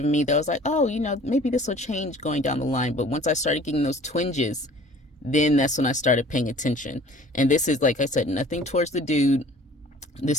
me that was like, oh, maybe this will change going down the line. But once I started getting those twinges, then that's when I started paying attention. And this is, like I said, nothing towards the dude.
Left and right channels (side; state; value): both; normal; correlation 0.49